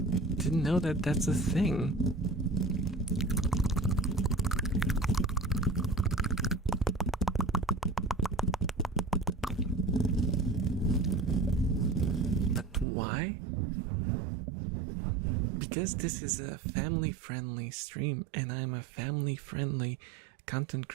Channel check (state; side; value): drops out; left; at 12.9 s